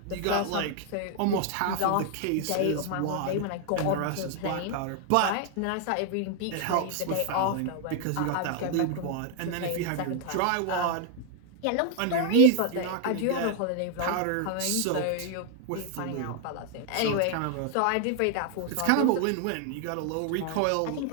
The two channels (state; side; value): different; both; correlation 0.00